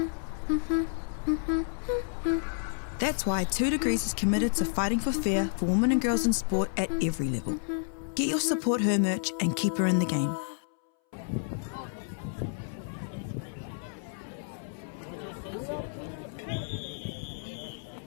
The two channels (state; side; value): silent; right; 57 dB below the other